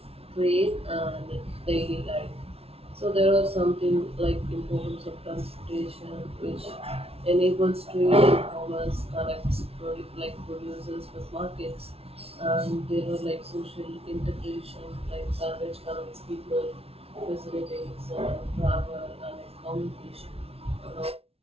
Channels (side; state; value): left; late; 0.29 ms